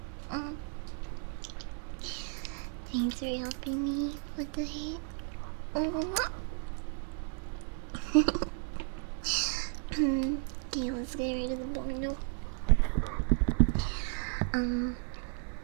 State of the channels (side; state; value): left; silent; 55 dB below the other